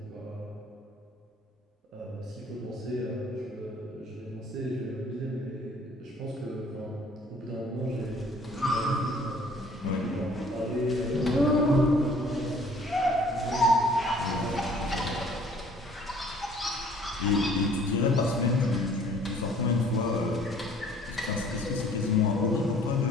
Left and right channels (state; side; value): normal; both; correlation 0.55